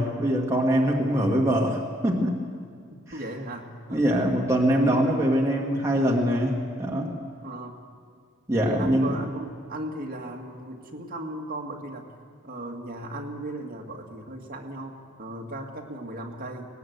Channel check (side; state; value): both; normal; correlation 0.71